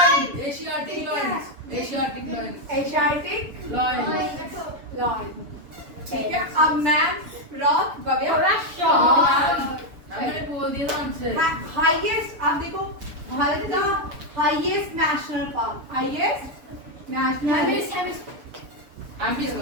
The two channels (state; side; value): late; left; 6.9 ms